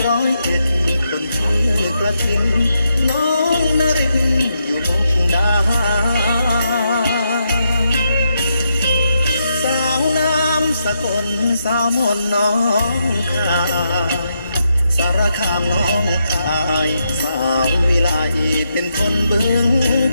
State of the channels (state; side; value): inverted; both; correlation -0.82